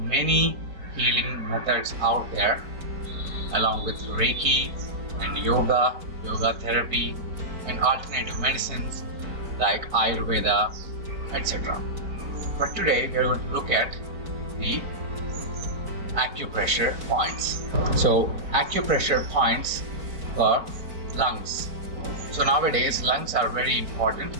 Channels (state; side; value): late; left; 4.5 ms